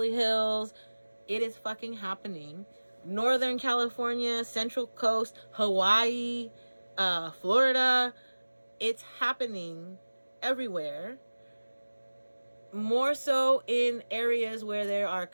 Hills. It is fucking happening. Northern California, Central Coast, Hawaii, Florida. It's happening everywhere. More so in areas where there are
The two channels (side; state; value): both; inverted; correlation -1.00